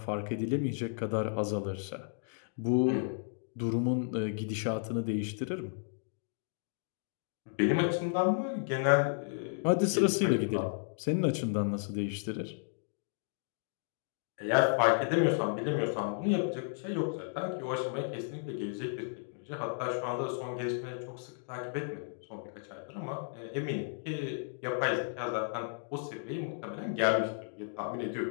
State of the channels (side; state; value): right; silent; digital silence